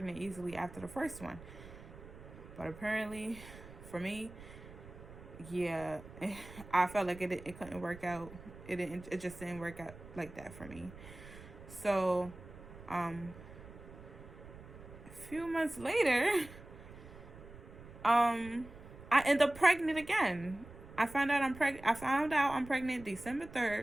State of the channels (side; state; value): right; noise; rumble, 16 dB below the sound